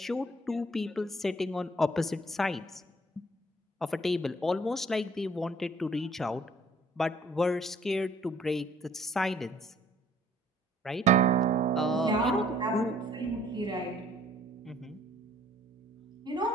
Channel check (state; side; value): normal; both; correlation 0.59